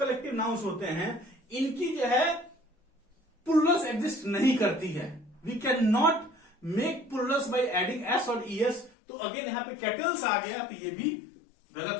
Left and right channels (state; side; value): drops out; right; at 8.9 s